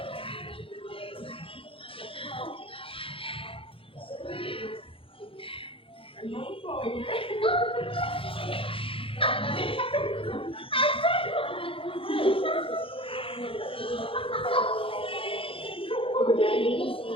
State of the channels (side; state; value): right; late; 0.26 ms